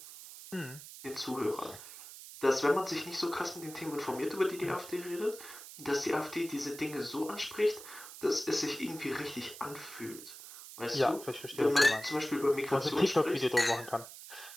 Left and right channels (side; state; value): right; noise; hiss, 14 dB below the sound